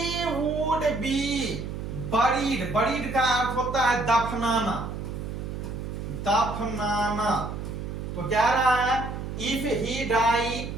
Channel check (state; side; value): noise; right; hum, 6 dB below the sound